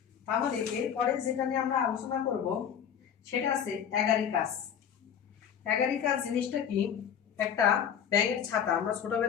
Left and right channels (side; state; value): right; quieter; 8.4 dB